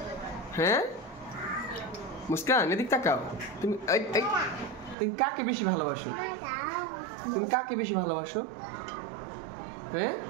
হ্যাঁ মুস্কান এদিক তাকাও তুমি তুমি কাকে বেশি ভালোবাসো তুমি কাকে বেশি ভালোবাসো হ্যাঁ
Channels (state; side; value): drops out; left; at 5.0 s